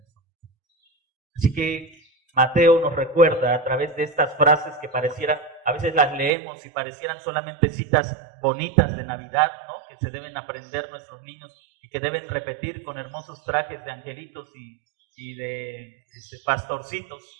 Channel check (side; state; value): left; drops out; at 6.3 s